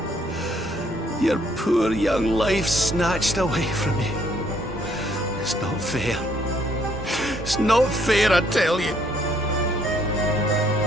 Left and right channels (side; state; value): both; normal; correlation 0.67